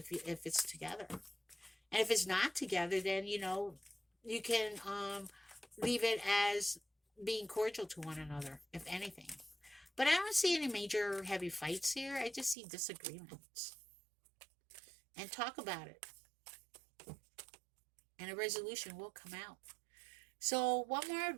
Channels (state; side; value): drops out; left; at 12.6 s